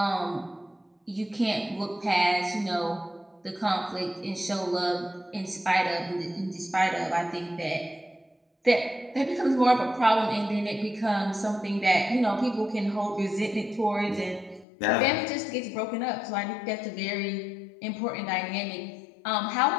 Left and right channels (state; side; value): drops out; right; at 14.7 s